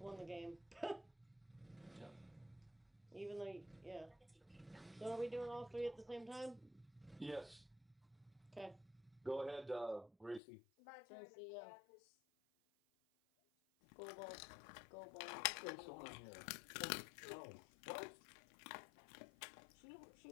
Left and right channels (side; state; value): right; drops out; at 10.4 s